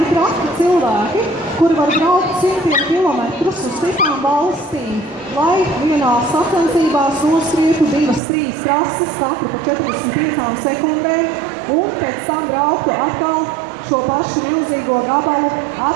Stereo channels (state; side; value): drops out; left; at 8.2 s